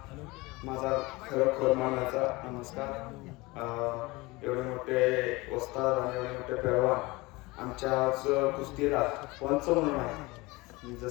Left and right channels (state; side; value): quieter; right; 22.8 dB